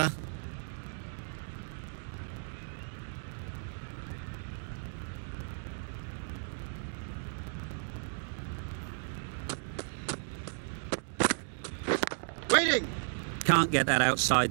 Waiting. Can't get that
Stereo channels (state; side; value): silent; left; digital silence